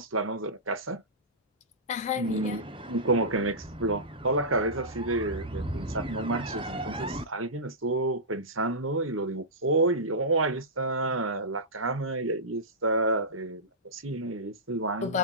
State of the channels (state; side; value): normal; both; correlation -0.17